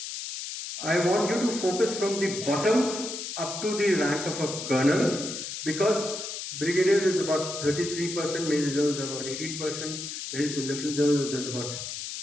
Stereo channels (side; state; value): left; noise; hiss, 7 dB below the sound